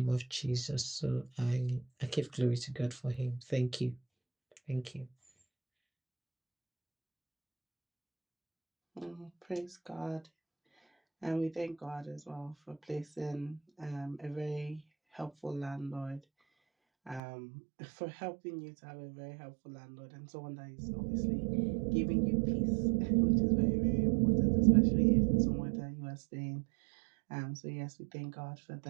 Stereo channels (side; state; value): left; drops out; at 17.2 s